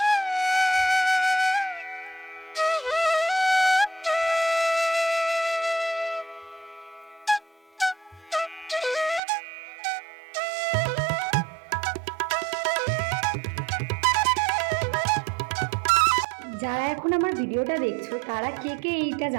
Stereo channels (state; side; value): drops out; left; at 9.2 s